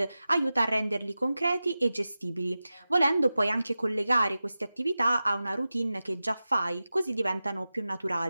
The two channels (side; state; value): both; inverted; correlation -0.94